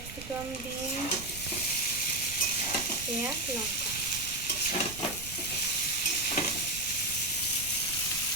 বিনস, পেঁয়াজ, লঙ্কা।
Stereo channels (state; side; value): noise; right; rumble, 13 dB below the sound